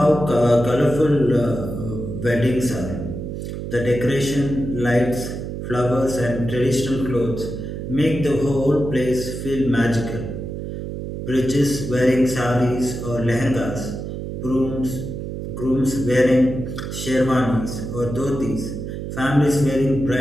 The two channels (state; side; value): noise; right; hum, 6 dB below the sound